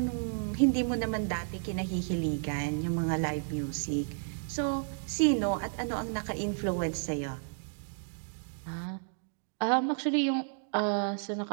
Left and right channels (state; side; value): silent; left; digital silence